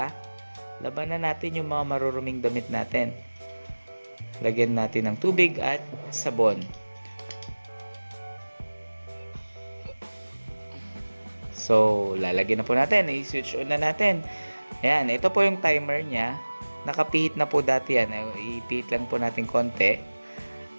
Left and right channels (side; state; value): both; inverted; correlation -1.00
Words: Laban na natin yung mga maruruming damit natin. Lagyan natin ng tubig at sabon. So, lalagyan na po natin. I-switch on na natin. Ayan, ito po yung timer niya. Nakapihit na po dati yan. Ipihit lang po natin konti.